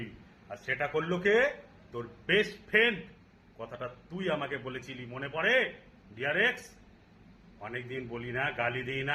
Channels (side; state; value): both; identical; correlation 1.00